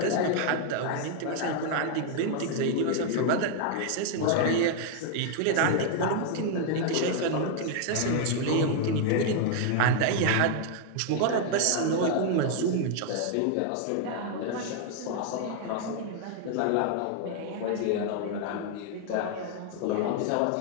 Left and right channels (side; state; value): both; different; correlation 0.00